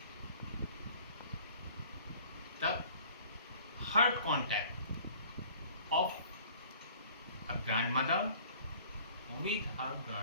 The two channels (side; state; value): both; inverted; correlation -0.52